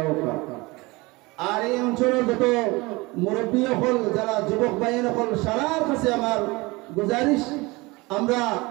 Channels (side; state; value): left; quieter; 23.6 dB